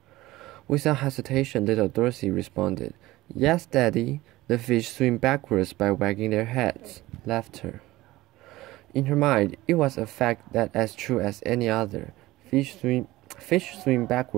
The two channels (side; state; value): left; quieter; 18.1 dB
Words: Without hesitation, little Dorothy responded, "Yes, Daddy. The fish swim backwards by wagging their heads." Laughter. In her mind, it was a fact that as true as any other. Fish swim